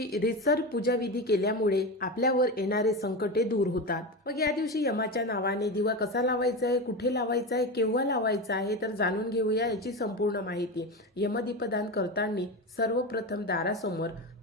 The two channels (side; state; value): both; normal; correlation 0.20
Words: रीतसर पूजाविधी केल्यामुळे आपल्यावर येणारे संकटे दूर होतात. मग या दिवशी यमाच्या नावाने दिवा कसा लावायचा आहे, कुठे लावायचा आहे, केव्हा लावायचा आहे तर जाणून घेऊया याची संपूर्ण माहिती. यमदीपदान करताना सर्वप्रथम दारासमोर